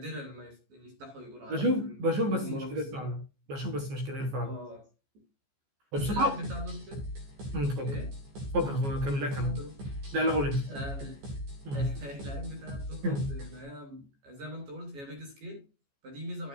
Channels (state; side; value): late; left; 14 ms